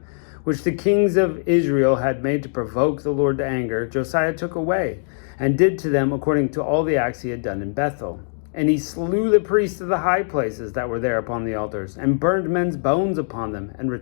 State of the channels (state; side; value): silent; right; digital silence